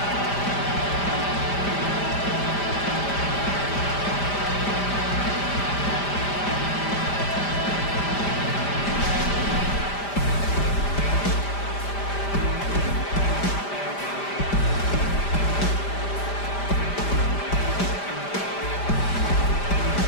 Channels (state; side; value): late; right; 5.0 ms